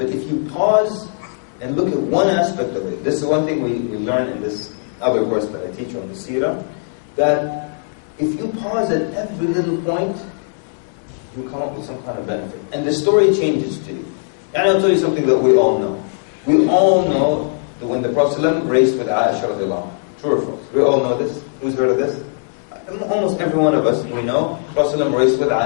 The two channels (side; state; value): right; silent; digital silence